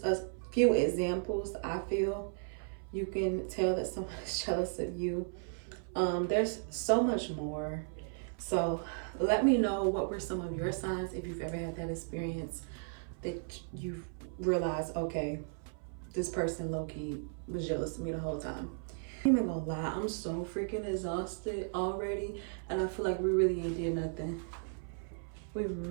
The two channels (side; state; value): left; silent; 54 dB below the other